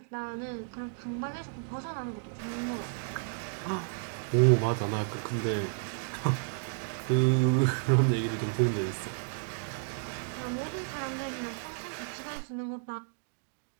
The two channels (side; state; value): left; silent; digital silence